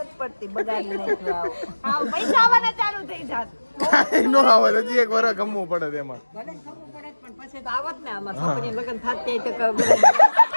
પડતી બગાડી નાખ્યું આવું પૈસા આવવાના ચાલુ થઈ જાત કાંઈ નો આવે હજી એક વાર ગમવું પડે તેમાં પણ પછી તો આવત ને આમાં છોકરી લગ્ન થતી તો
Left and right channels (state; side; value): inverted; both; correlation -1.00